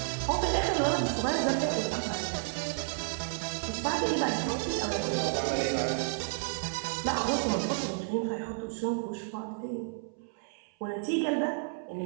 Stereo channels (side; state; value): left; silent; 57 dB below the other